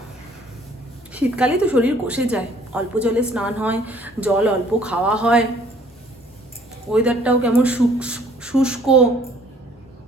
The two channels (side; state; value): both; normal; correlation 0.58